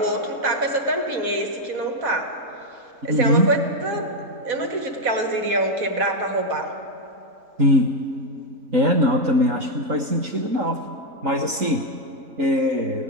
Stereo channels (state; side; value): late; left; 4.1 ms